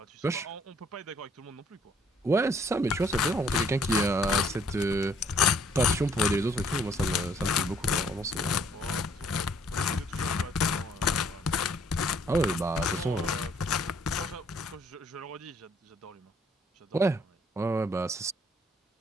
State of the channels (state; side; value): normal; both; correlation 0.63